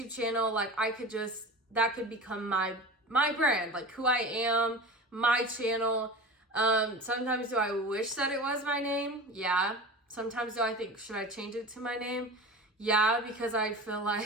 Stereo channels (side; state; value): both; normal; correlation 0.33